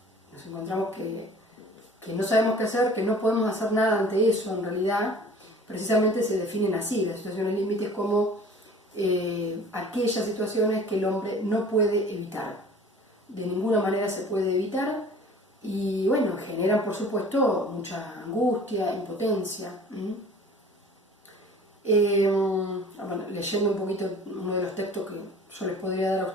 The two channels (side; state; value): both; normal; correlation 0.47